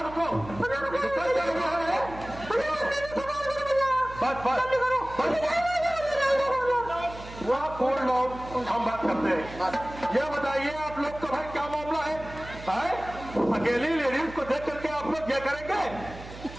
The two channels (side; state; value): right; noise; hum, 14 dB below the sound